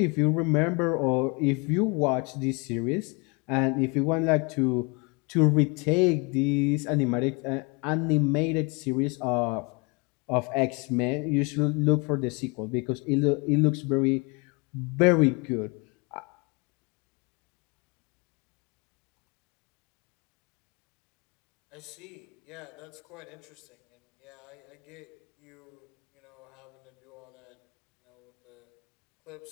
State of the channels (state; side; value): quieter; right; 30.1 dB